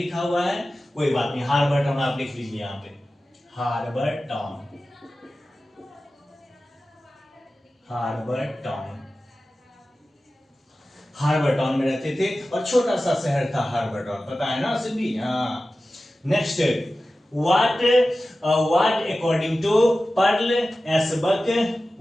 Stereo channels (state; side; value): normal; both; correlation 0.95